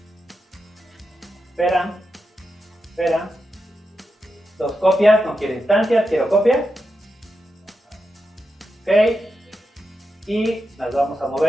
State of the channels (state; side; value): normal; both; correlation 0.87